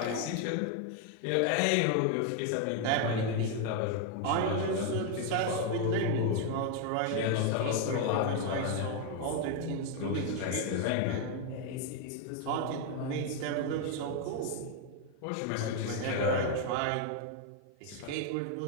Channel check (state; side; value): different; both; correlation 0.01